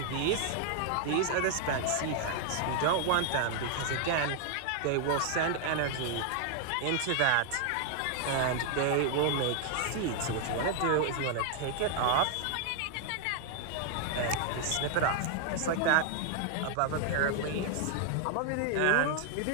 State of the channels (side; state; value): both; different; correlation 0.00